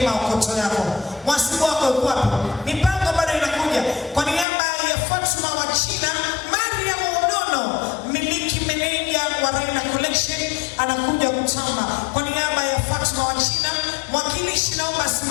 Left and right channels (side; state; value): right; drops out; at 4.5 s